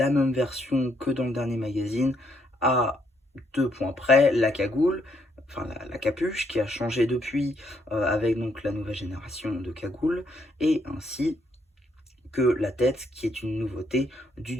même version que dans le dernier magazine. À 2 points près, la cagoule. Enfin, la capuche qui a changé depuis avec donc la nouvelle génération de cagoules. Et ainsi que la tête, qui est une nouveauté du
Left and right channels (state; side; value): normal; both; correlation 0.73